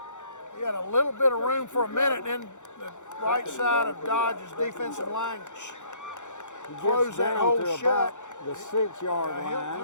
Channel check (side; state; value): right; late; 0.85 ms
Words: He had a little bit of room for a minute, then the right side of Dodge's defensive line closed that hole shut. The 6-yard line.